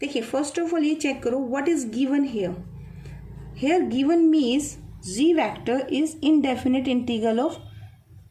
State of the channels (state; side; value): identical; both; correlation 1.00